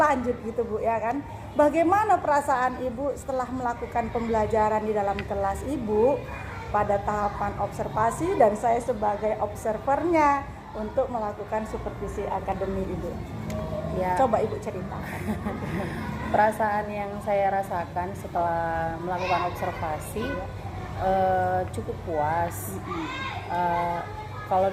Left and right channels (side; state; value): both; identical; correlation 1.00